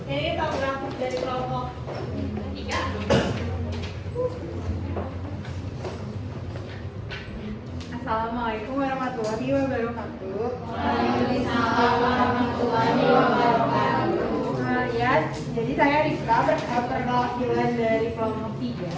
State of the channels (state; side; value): identical; both; correlation 1.00